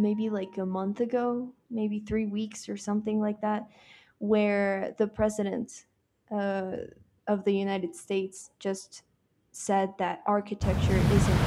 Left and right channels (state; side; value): identical; both; correlation 1.00